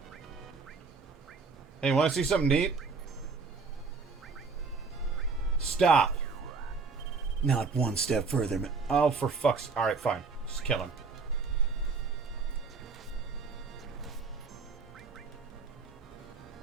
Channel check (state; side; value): quieter; left; 4.6 dB